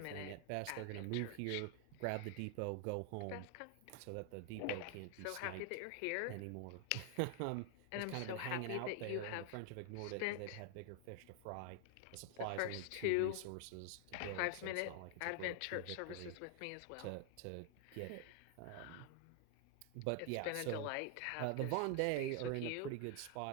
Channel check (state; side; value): different; both; correlation 0.00